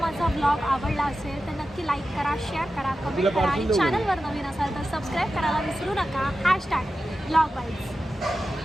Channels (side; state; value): both; normal; correlation 0.93